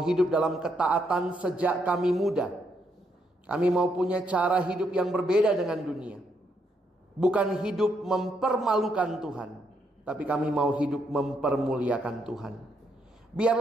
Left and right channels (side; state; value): both; normal; correlation 0.76